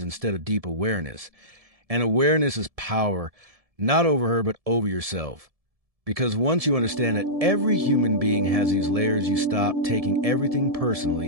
instead of deep awareness. And awareness is power, not over her, but over yourself. Because once you understand that every human being has these layers, you stop taking everything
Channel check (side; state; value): left; late; 1.7 ms